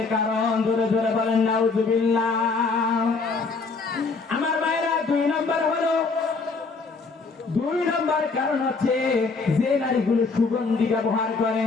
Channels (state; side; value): quieter; right; 4.2 dB